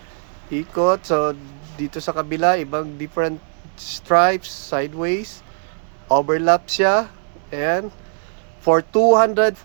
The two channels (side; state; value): left; silent; 66 dB below the other